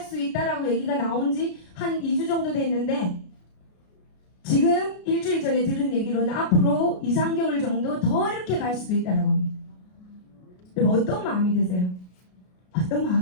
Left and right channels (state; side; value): late; right; 33 ms